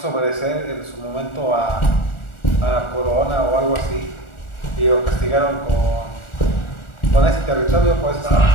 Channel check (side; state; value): right; late; 1.4 ms